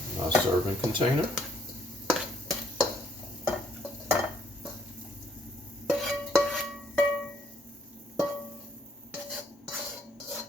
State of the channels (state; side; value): normal; both; correlation 0.67